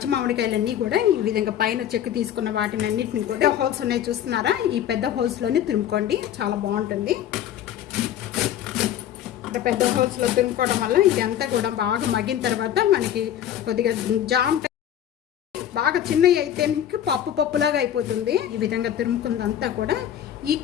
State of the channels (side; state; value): right; quieter; 10.7 dB